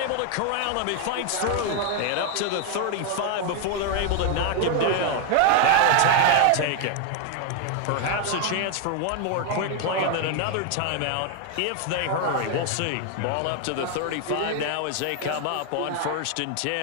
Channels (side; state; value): both; different; correlation 0.01